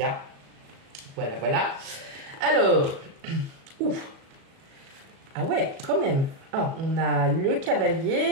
a. Voilà. Alors, ouf. Ah ouais, quand même. Ah, on a le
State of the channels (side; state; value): left; late; 37 ms